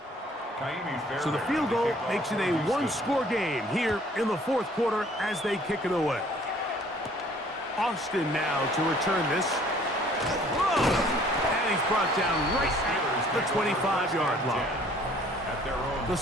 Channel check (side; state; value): both; normal; correlation 0.57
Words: So the field goal makes it a one-score game here in the fourth quarter as they kick it away. Austin now to return this. Whoa! And he's brought down right at the 25-yard line. The